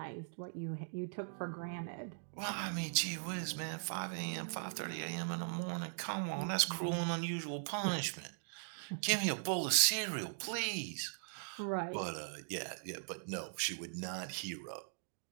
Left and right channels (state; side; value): silent; left; digital silence